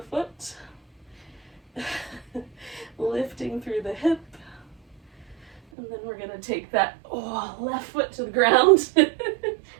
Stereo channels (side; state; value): left; drops out; at 5.6 s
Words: foot. Lifting through the hip. And then we're going to take that left foot to the ground,